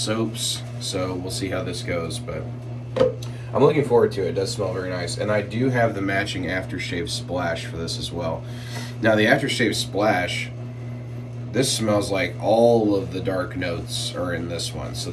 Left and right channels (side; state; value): both; identical; correlation 1.00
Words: so we'll see how this goes, but I'm looking forward to it. It does smell very nice, and I do have the matching aftershave splash for this as well. Now the aftershave splash, this smells like all of the dark notes are in this one, so